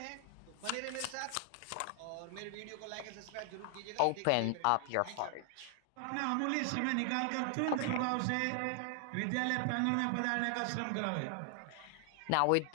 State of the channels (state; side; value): different; both; correlation 0.00